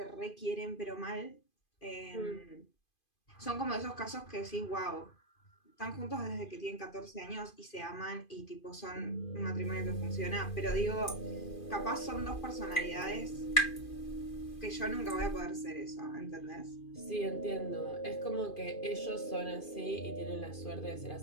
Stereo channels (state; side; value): late; right; 2.5 ms